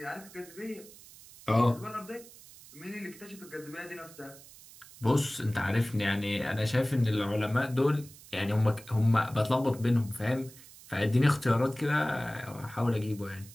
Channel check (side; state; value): right; noise; hiss, 20 dB below the sound